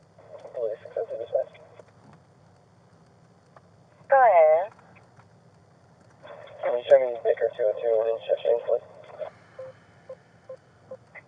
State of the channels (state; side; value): identical; both; correlation 1.00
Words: Baker 202 in Cheshire, please.